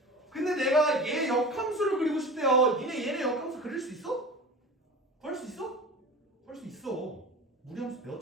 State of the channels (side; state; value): both; normal; correlation 0.34